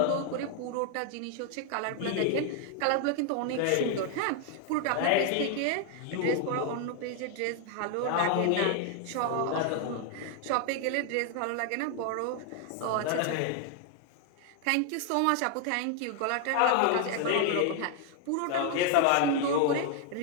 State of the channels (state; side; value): different; both; correlation 0.00